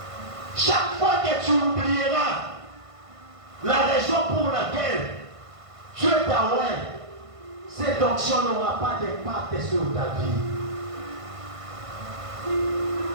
Chaque fois que tu oublieras la raison pour laquelle Dieu t'a oint, cette onction n'aura pas d'impact sur ta vie.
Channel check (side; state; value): left; late; 1.5 ms